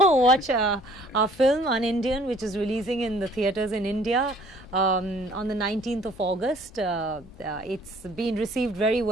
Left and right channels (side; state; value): both; normal; correlation 0.56